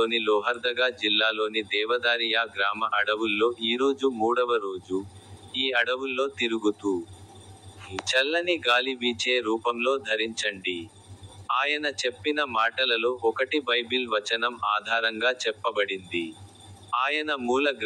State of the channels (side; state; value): both; identical; correlation 1.00